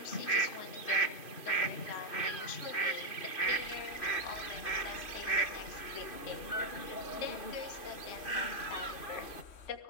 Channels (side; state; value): right; late; 3.1 ms